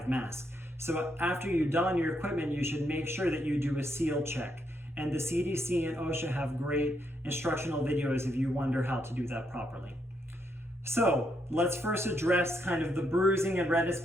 mask. So after you don your equipment, you should make sure that you do a seal check. And the CDC and OSHA have great instructional videos if you wonder how to do that properly. So let's first address kind of the bruising and redness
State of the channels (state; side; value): normal; both; correlation 0.77